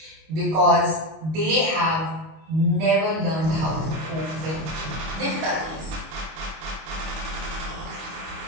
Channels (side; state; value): left; late; 25 ms